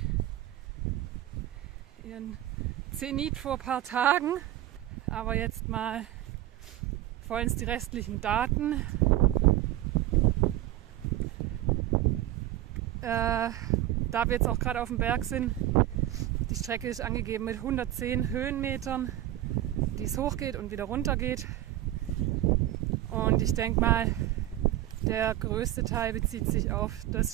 ihren Zenit vor ein paar Tagen, aber jetzt mal vollends die restlichen Daten. Da wir jetzt auch gerade auf dem Berg sind, die Strecke ist angegeben mit 110 Höhenmetern, die es hochgeht und wieder runter geht. Und ich denke mal, der größte Teil bezieht sich auf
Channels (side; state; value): left; quieter; 14.1 dB